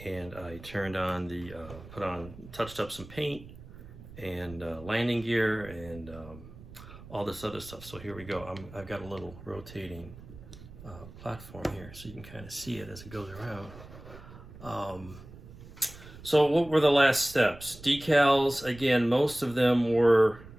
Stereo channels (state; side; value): noise; right; rumble, 17 dB below the sound